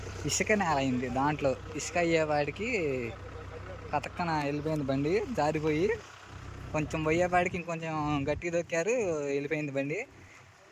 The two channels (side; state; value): both; identical; correlation 1.00